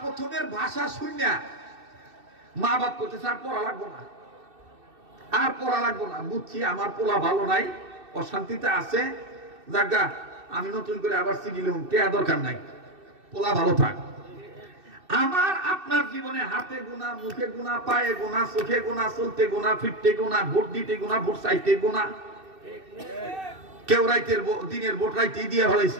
ভাষা শুনিয়া মা বাপ করতেছে আর পড়া লাগবো না, আর পড়া লাগবো না, বুঝছি আমার পোলা ভালো নাই, অশান্তিতে আছে, জাগা আমি নতুন করে আবার সিগিলুম, টেয়া দরকার নাই, পোলা ভালো থাক। আমার আপনার জীবনে হাতে গুণা, মুখে গুণা, পায়ে গুণা, চোখে গুণা, চলতে গুণা, ফিরতে গুণা, ভোট দিতে গুণা, ভোট চাইতে গুণা, কেউ রাইতের দিনের ভোট রাইতেই দিয়ে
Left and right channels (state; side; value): late; left; 2.6 ms